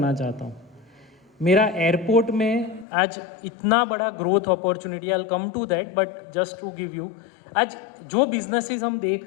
चाहता हूँ। मेरा एयरपोर्ट में आज इतना बड़ा growth opportunity, I will come to that, but just to give you, आज जो बिजनेसेस हम देख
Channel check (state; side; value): drops out; right; at 2.9 s